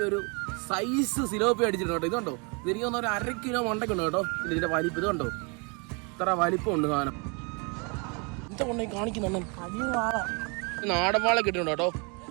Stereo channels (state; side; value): quieter; left; 32.8 dB